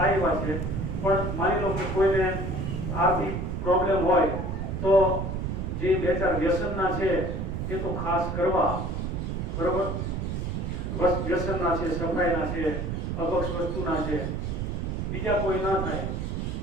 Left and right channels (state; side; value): noise; right; rumble, 2 dB below the sound